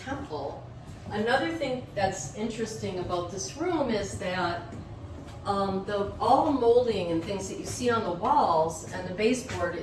Another thing that's interesting about this room is that all the molding and things that you see on the walls and the baseboard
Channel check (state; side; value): identical; both; correlation 1.00